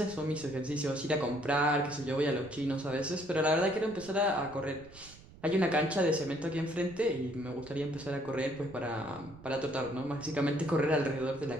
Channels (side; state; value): right; noise; rumble, 20 dB below the sound